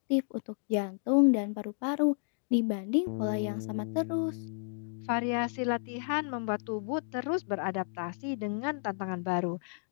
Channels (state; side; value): silent; right; digital silence